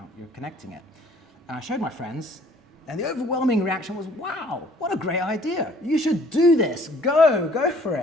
You're connecting it. And I showed my friends, and the overwhelming reaction was, wow, what a great idea. You should do this. Go for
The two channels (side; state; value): both; normal; correlation 0.57